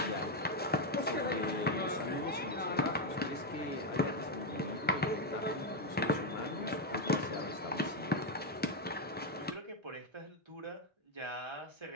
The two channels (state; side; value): normal; both; correlation 0.05